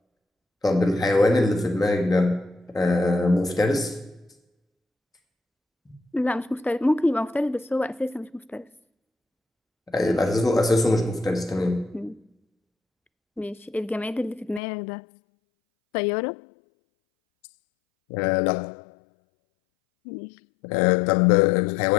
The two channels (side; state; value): right; drops out; at 14.6 s